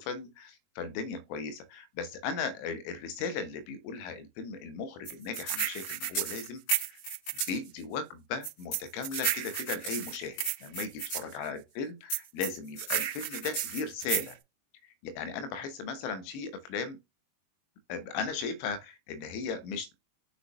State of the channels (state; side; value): late; right; 21 ms